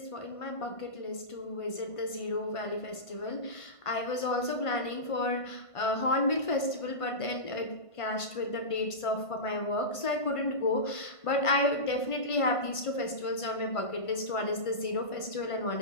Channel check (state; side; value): late; right; 1.5 ms